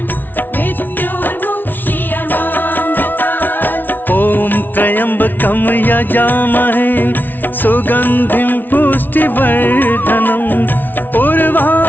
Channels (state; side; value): late; right; 0.088 ms